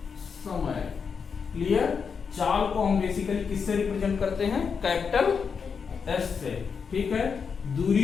समय। क्लियर। चाल को हम बेसिकली किससे रिप्रेजेंट करते हैं कैपिटल एस से, ठीक है।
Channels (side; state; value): right; quieter; 6.0 dB